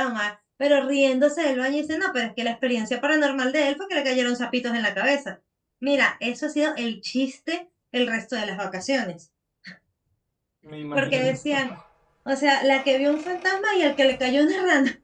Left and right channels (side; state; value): both; identical; correlation 1.00